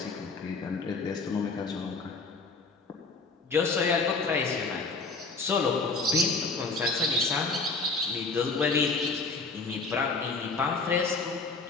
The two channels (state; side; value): quieter; right; 4.0 dB